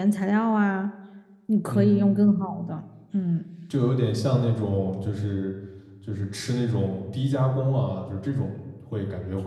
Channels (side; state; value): both; identical; correlation 1.00